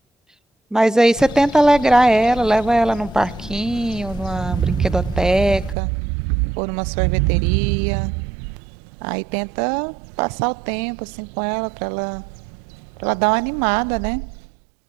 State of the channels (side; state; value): left; drops out; at 5.8 s